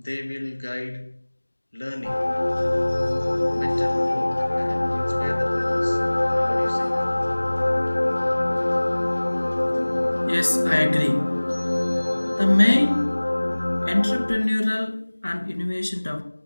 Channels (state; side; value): inverted; both; correlation -1.00